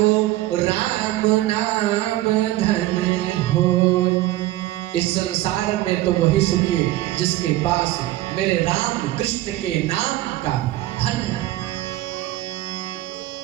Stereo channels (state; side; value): quieter; left; 16.2 dB